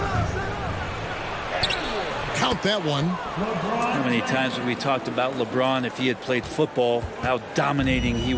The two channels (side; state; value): both; identical; correlation 1.00